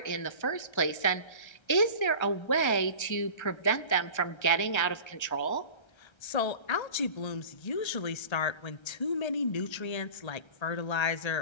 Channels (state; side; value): late; right; 1.3 ms